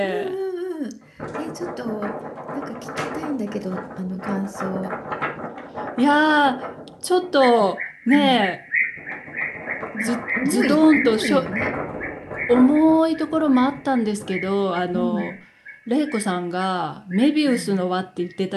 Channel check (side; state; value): both; identical; correlation 1.00